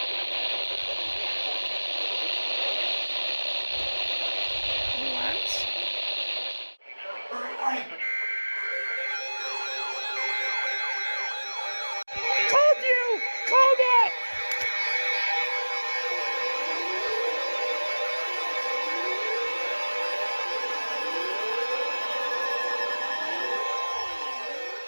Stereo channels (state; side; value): inverted; both; correlation -1.00